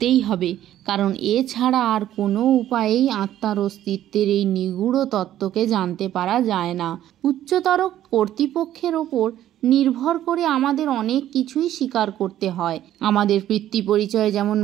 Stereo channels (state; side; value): quieter; left; 12.3 dB